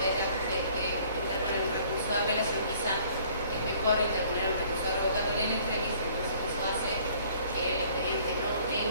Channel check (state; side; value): inverted; both; correlation -0.56